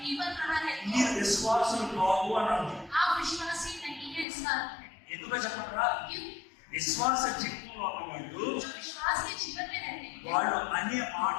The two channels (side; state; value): right; drops out; at 4.2 s